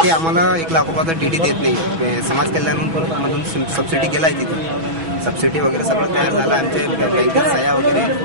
ते आम्हाला 1 लाख रुपयाचा डीडी देत नाही। समाज कल्याणमधून सबसिडी गेला आहे, तिथं सबसिडी वगैरे सगळं तयार झालं। आमचे बँकेत सह्या वगैरे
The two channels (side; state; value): left; late; 6.1 ms